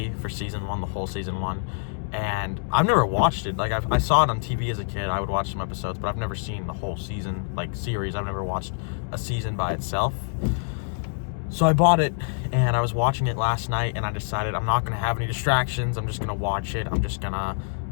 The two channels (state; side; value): silent; right; digital silence